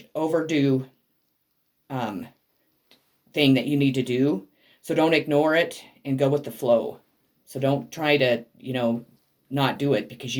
overdue thing that you need to do. So don't ignore it and go with the flow. So don't try to, not do it, because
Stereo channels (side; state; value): both; identical; correlation 1.00